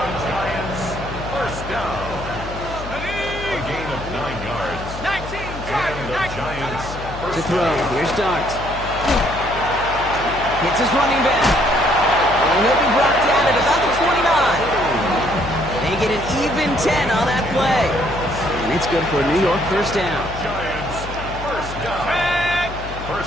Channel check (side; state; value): left; noise; hum, 10 dB below the sound